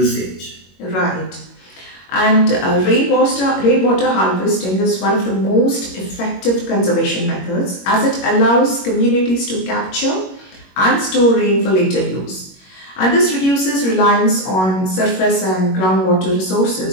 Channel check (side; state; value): right; late; 21 ms